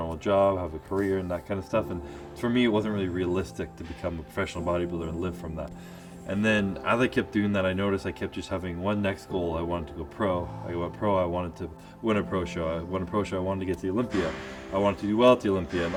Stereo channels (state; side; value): identical; both; correlation 1.00